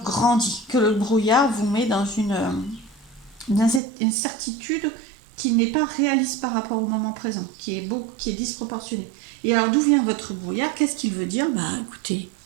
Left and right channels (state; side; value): drops out; left; at 3.8 s